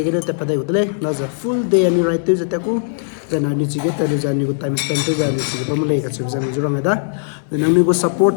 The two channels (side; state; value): right; silent; digital silence